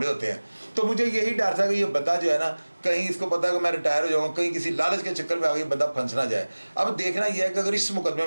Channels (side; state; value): both; inverted; correlation -1.00